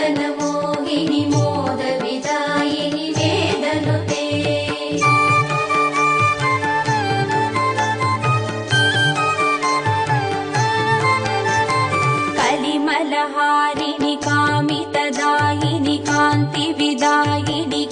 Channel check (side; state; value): both; identical; correlation 1.00